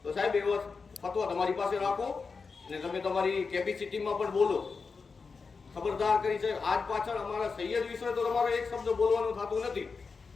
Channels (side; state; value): right; quieter; 4.8 dB